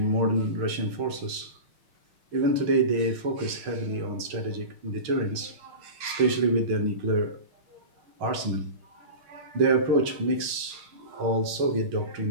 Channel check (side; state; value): left; late; 6.4 ms